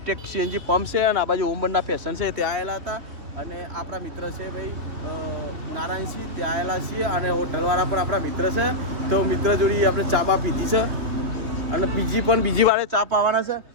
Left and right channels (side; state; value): left; late; 3.1 ms